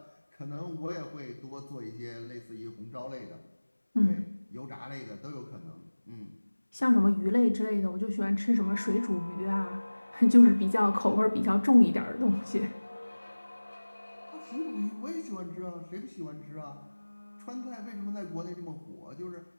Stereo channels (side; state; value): both; inverted; correlation -1.00